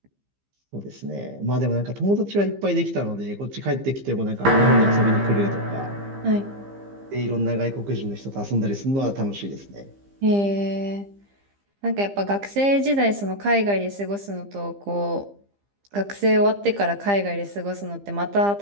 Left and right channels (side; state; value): left; late; 15 ms